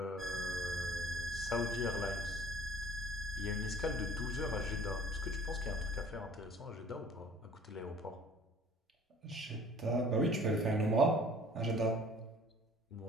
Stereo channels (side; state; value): both; normal; correlation 0.51